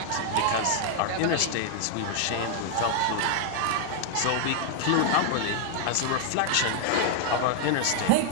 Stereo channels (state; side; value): different; both; correlation 0.00